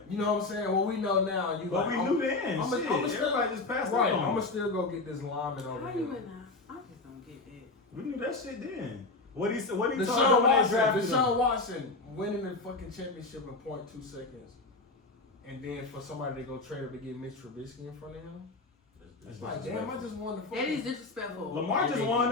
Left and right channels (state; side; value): quieter; right; 3.3 dB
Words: You know what I'm saying? What we know now, you But like, we knew then. I'm Shit, still, everybody just passed right. it on. I'm gonna still go get this lineman over How here. you in that? I just don't get that. We knew that shit then. What he told Deshaun them when they Watson, drafted Deshaun him. Watson winning the fucking championship in 0.2 seconds, and then for somebody to go trade him to get Mitch Trubisky in front of him, it's like, damn, I just won the fucking. That is disrespectful. Lamar just won